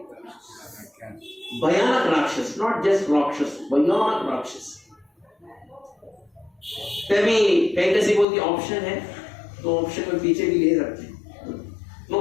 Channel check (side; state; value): right; drops out; at 8.2 s